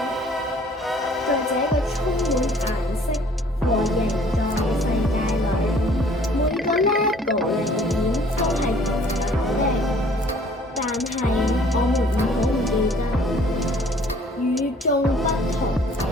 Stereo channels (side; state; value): both; normal; correlation 0.56